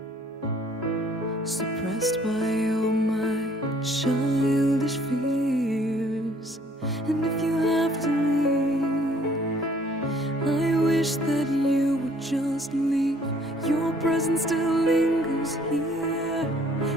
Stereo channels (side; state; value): both; normal; correlation 0.59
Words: suppressed by all my childish fears. And if you have to leave, I wish that you would just leave. Your presence still lingers here,